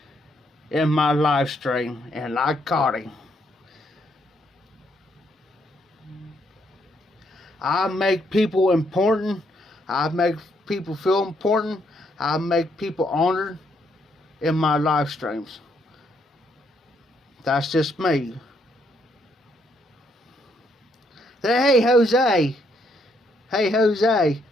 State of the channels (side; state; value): both; normal; correlation 0.73